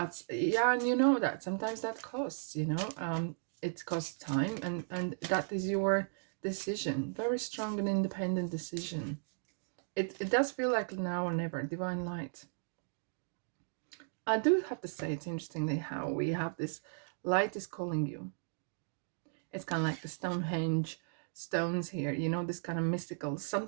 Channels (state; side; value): silent; left; digital silence